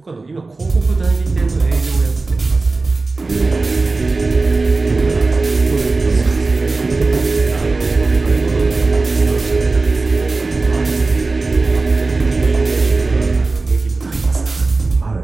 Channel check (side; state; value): left; quieter; 3.6 dB